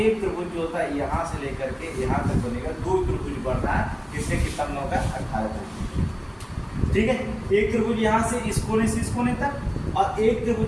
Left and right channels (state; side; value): identical; both; correlation 1.00